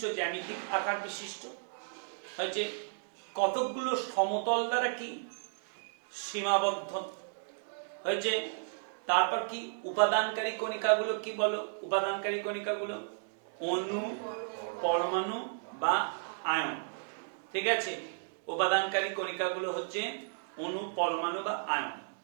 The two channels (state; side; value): silent; left; digital silence